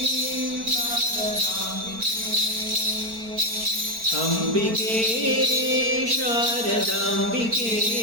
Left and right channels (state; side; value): late; left; 4.4 ms